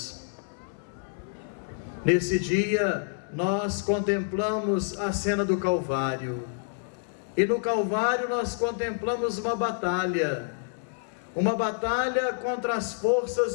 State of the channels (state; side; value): silent; right; 59 dB below the other